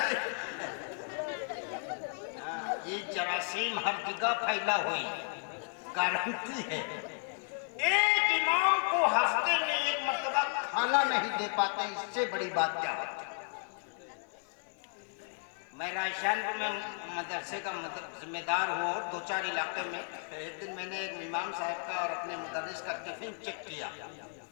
ये जरासीम हर जगह फैला हुई, गारंटी है। एक इमाम को हफ्ते में एक मर्तबा खाना नहीं दे पाते, इससे बड़ी बात क्या होती? मैं रायशानपुर में मदरसे का जिम्मेदार हुआ, 2-4 इलाके में। एक दिन मैंने एक इमाम साहब का और अपने मुदर्रिस का टिफिन चेक किया।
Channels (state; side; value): silent; right; 55 dB below the other